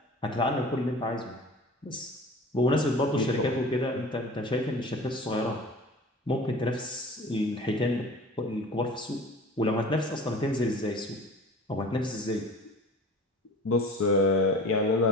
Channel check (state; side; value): normal; both; correlation 0.40